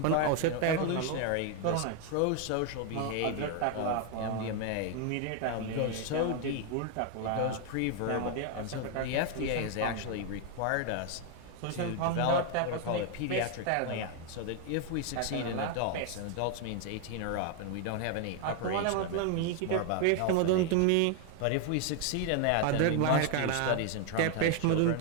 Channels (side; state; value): both; different; correlation 0.00